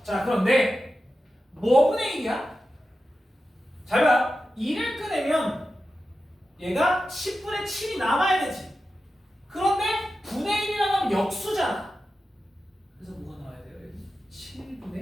자, 그런데 뭐분의 1이야? 잘 봐. 2를 꺼내면 얘가 10분의 7이 남아야 되지. 그런데 분의 1이라고 하면 역수잖아. 그래서 뭐가 나와야 돼요? 여기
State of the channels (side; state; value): both; normal; correlation 0.92